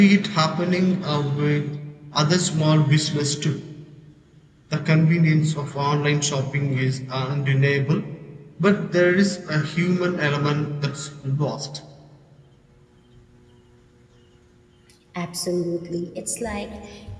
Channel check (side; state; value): both; identical; correlation 1.00